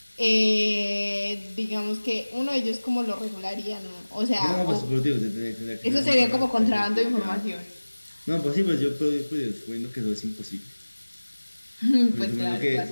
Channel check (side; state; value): both; inverted; correlation -1.00